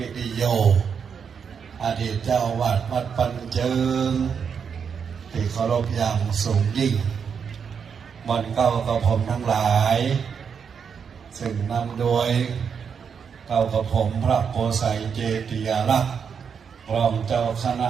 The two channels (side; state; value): left; quieter; 6.7 dB